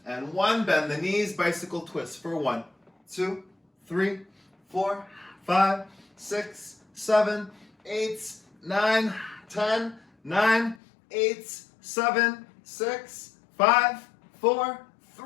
and 1. Bend the knees, bicycle twist for 1, 2, 3, 4, 5, 6, 7, 8, 9, 10, 9, 8, 7, 6, 5, 4,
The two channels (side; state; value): right; drops out; at 10.8 s